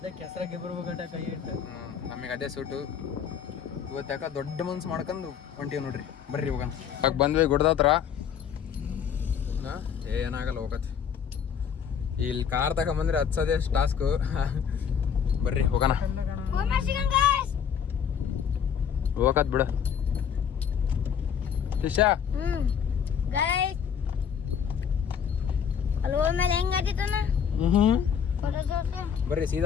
ಹೆಸರಾಗೆ ಬರ್ಬೇಕಟ ಕೈ ಇಟ್ಟು. ನಮಗೆ ಅದೇ ಸೂಟು. ಇವತ್ತು ಯಾಕೆ ದೊಡ್ಡ ಮನ್ಸು ಮಾಡ್ಕೊಂಡು ಹೊಂಟೀವಿ ನೋಡ್ರಿ. ಬರ್ರಿ ಹೋಗೋಣ. ಇವಾಗ ಬಂದ್ವಿ ಗುಡ್ದ ಹತ್ರ. ಏನಾಗಲ್ಲ, ಹೋಗತ್ತೆ. ಇಲ್ಲಿ ಕಾರ್ ತಗೊಂಬಂದ್ರೆ ಹತ್ಸೋದೇ ಟಾಸ್ಕು. ಬರ್ರಿ ಹೋಗೋಣ. ಹೋಗತ್ ಬಿಡು ಶಿಷ್ಯ. ಬರ್ರಿ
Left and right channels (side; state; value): right; quieter; 7.7 dB